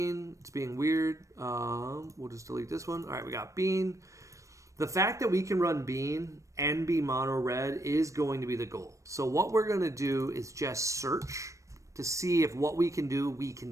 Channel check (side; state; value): left; late; 0.15 ms